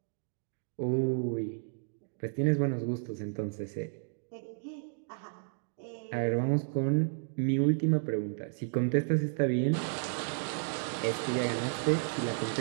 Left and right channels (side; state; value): left; silent; digital silence